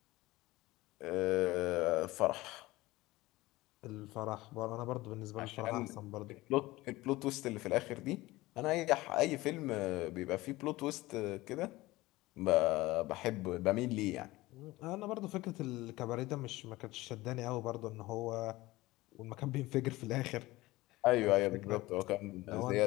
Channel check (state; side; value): quieter; right; 19.2 dB